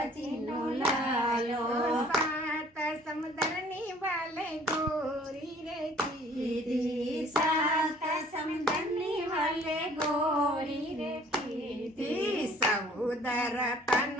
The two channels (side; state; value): both; normal; correlation 0.55